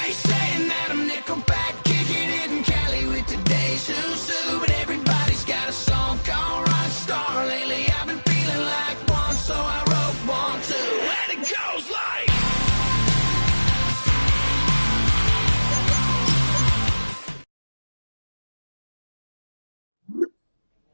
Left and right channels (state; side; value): inverted; both; correlation -1.00